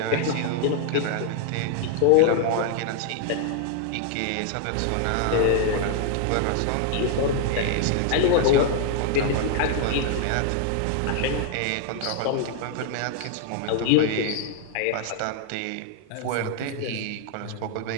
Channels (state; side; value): different; both; correlation 0.00